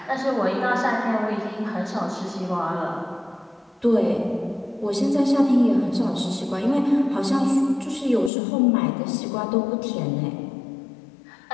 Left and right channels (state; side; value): drops out; right; at 8.3 s